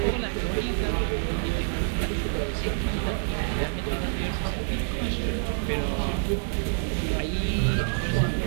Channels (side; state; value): left; silent; digital silence